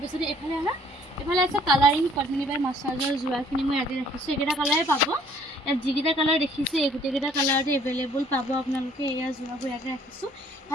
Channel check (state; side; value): normal; both; correlation 0.59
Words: এইফালে আছে কালাৰিং পদ্মিনী বাই মাছাজৰ যোৰাখিনি মই ইয়াতে ৰাখিছোঁ এইকেইটা কালাৰে পাব ইয়াত যিকেইটা কালাৰ দেখিছে এই গোটেইকেইটা কালাৰতে এভেইলেবল পাব আপোনালোকে এয়া যোৰাবোৰ ইয়াতে ৰাখিছোঁ